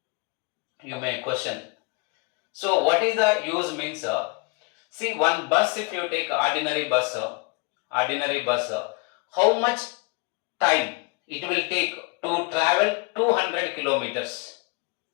You may question. So, what is the use means? See, one bus, if you take ordinary bus, how much time it will take to travel 200 kilometers?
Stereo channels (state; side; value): quieter; right; 29.0 dB